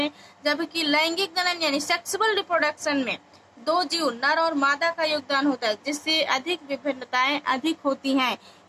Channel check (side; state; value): both; identical; correlation 1.00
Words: जबकि लैंगिक जनन यानी सेक्सुअल रिप्रोडक्शन में 2 जीव नर और मादा का योगदान होता है, जिससे अधिक विभिन्नताएं अधिक होती हैं।